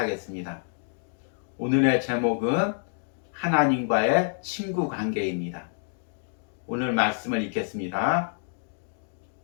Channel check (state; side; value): silent; right; digital silence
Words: 오늘의 제목은 하나님과의 친구 관계입니다. 오늘 말씀을 읽겠습니다.